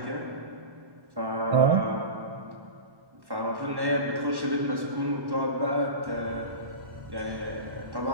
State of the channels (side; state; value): left; late; 1.1 ms